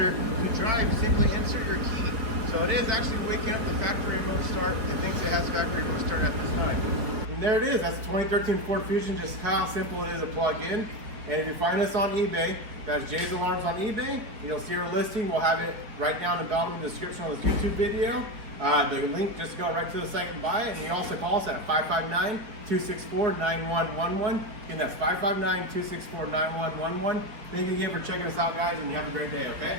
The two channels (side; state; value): left; late; 4.7 ms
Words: to drive, simply insert your key. So it is actually waking up the factory remote start. It thinks it has factory remote start at this time. And there it is. That's the 2013 Ford Fusion, just how simple it is to plug in. And if you find us on eBay, that's Jay's Alarms on eBay. You'll see our listing. We'll have it right down in the bottom of the description on this YouTube video. The link, just go right to the site and buy it. And you also call us at 559-264-9111. Again, that's 559-264-9111. Thank you again for checking us out, guys, and you have a great day, okay?